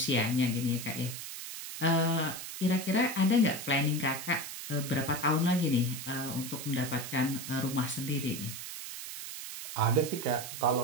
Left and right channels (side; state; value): right; noise; hiss, 9 dB below the sound